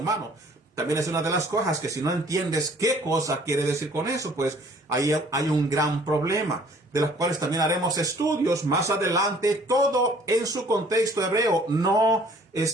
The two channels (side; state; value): both; normal; correlation 0.56